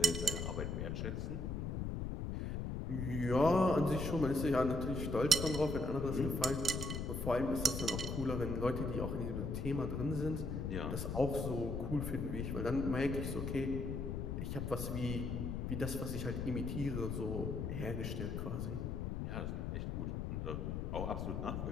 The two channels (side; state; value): left; noise; rumble, 2 dB below the sound